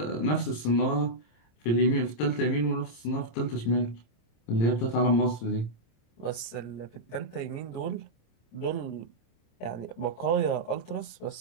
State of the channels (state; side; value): late; right; 26 ms